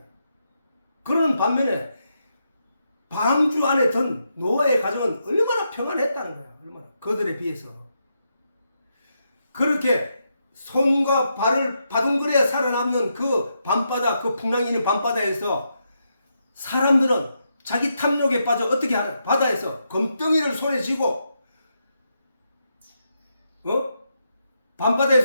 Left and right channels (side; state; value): both; inverted; correlation -0.82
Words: 그러는 반면에 방주 안에 든 노아의 가정은 얼마나 평안했다는 거야. 얼마나 그들에 비해서. 그렇게 손과 발을 바둥거려야 살아남는 그 밤바다, 그 풍랑이 있는 밤바다에서 사람들은 자기 탐욕에 빠져 어떻게 하나? 바다에서 검덩이를 손에 쥐고